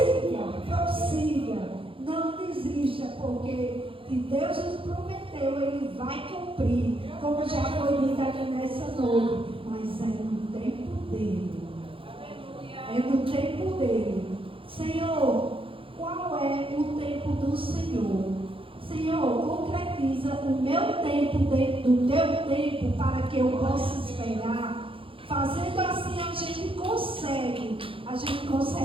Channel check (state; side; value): late; left; 0.26 ms